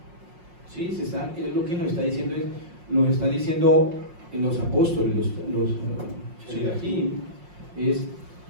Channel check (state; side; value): late; left; 5.6 ms